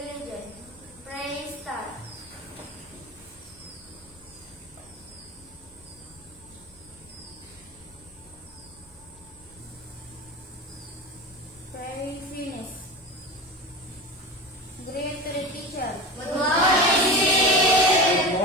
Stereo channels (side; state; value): both; normal; correlation 0.28